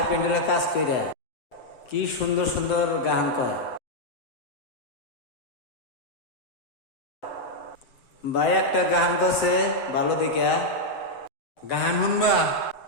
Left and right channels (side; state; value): right; late; 7.8 ms